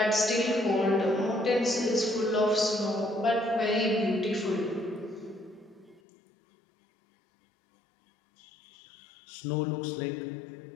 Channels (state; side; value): drops out; right; at 6.0 s